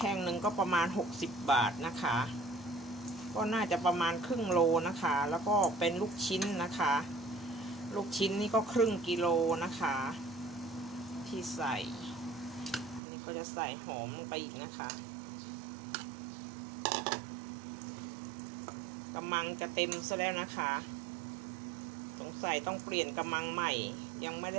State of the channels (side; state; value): left; drops out; at 13.0 s